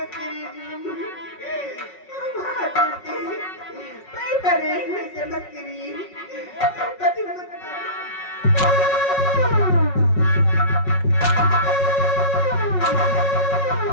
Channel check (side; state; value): right; late; 5.4 ms